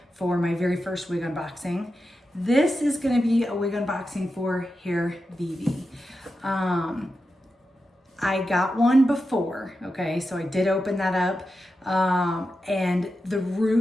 for my very first wig unboxing. This is going to be a wig unboxing for HairVivi. I got one before, okay, so I did open that up, and the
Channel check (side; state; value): both; normal; correlation 0.90